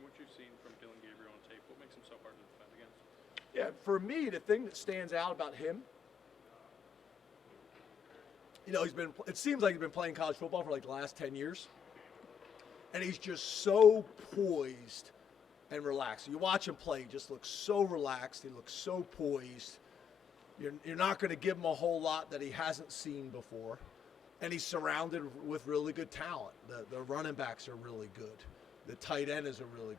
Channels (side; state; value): right; quieter; 7.4 dB